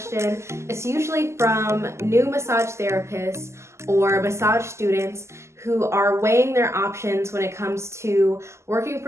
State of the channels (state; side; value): late; left; 0.13 ms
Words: it's usually from new massage therapists or massage students who are weighing their options when it comes to working